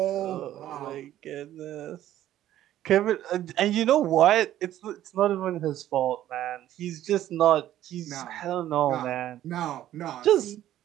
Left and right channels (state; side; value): quieter; left; 12.8 dB